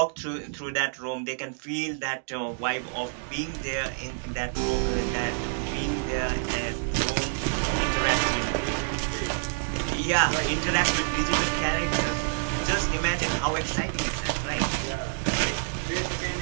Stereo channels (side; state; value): left; silent; digital silence